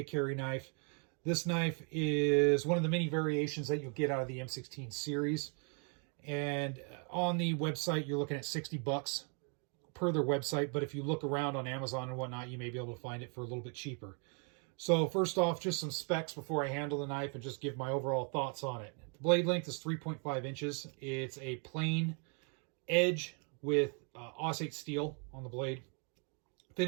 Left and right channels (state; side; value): quieter; left; 39.0 dB